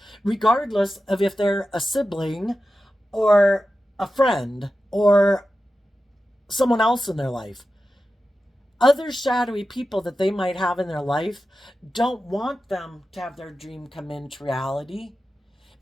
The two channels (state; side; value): normal; both; correlation 0.92